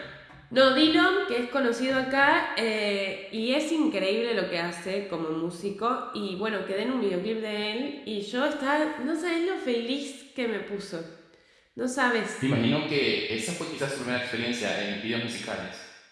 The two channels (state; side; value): identical; both; correlation 1.00